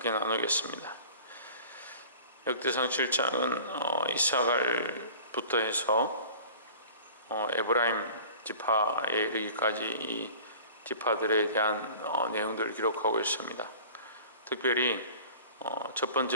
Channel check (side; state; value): both; inverted; correlation -0.43